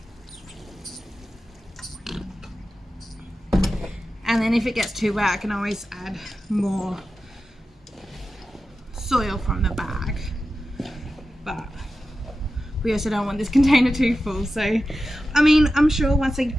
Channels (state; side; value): normal; both; correlation 0.93